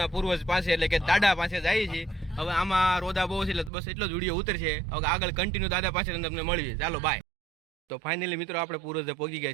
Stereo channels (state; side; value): drops out; left; at 3.7 s